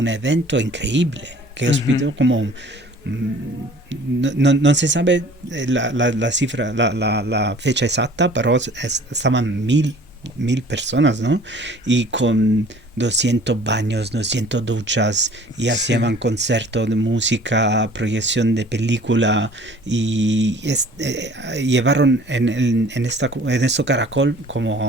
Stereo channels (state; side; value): normal; both; correlation 0.50